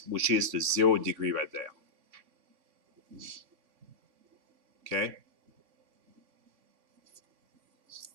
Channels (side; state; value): left; late; 3.5 ms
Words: which is the 0 degree right there. Okay.